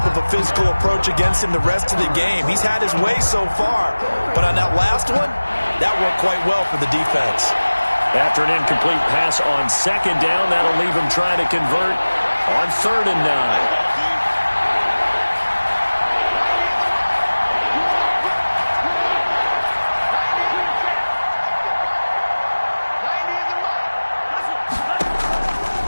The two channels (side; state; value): both; inverted; correlation -1.00